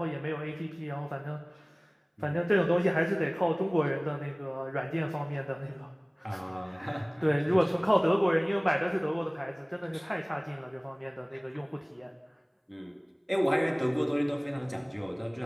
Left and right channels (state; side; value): identical; both; correlation 1.00